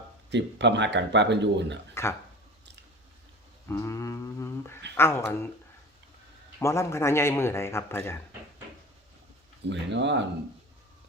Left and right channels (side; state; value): both; normal; correlation 0.36